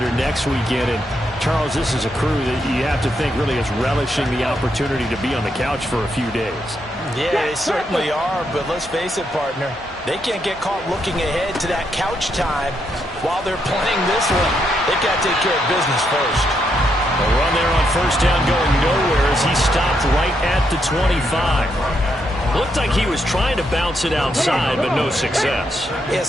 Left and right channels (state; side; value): normal; both; correlation 0.79